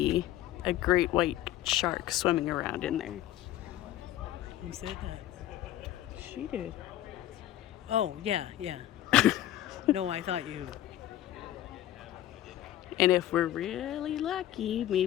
a great white shark swimming around in there. Who said that? She did. Oh, yeah. No, I thought you... And if we're really lucky,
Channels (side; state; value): right; quieter; 13.4 dB